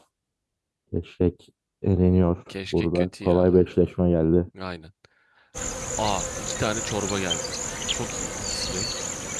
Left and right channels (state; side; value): identical; both; correlation 1.00